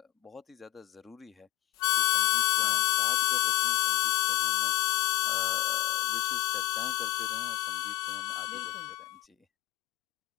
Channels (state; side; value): quieter; right; 16.4 dB